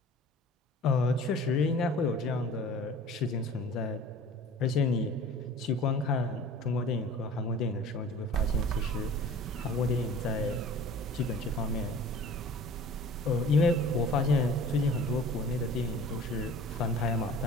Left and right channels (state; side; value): normal; both; correlation 0.44